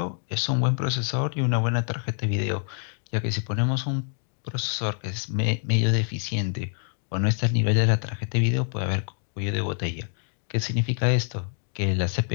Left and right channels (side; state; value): right; silent; 61 dB below the other